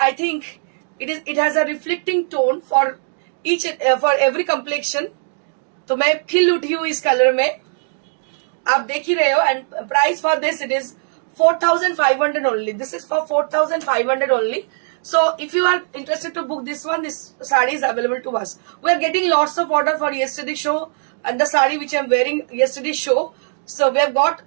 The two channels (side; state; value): left; silent; digital silence